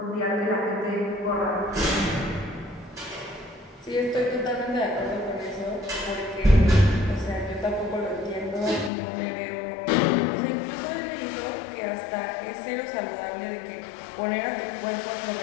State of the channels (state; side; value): drops out; right; at 8.9 s